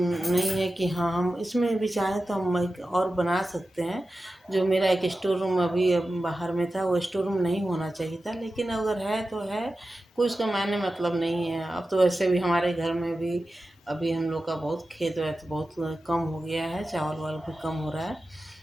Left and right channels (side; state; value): both; normal; correlation 0.93